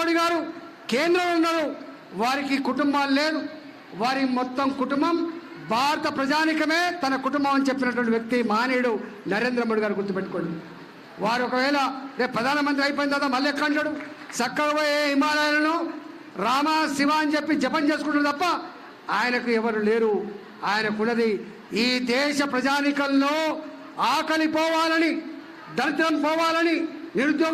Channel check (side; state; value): both; identical; correlation 1.00